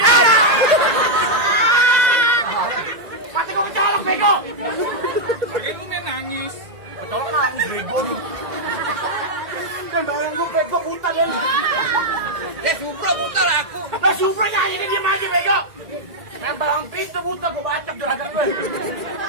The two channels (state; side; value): late; left; 1.9 ms